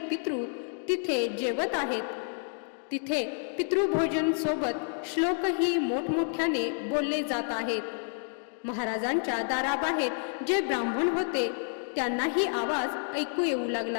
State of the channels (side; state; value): right; silent; 58 dB below the other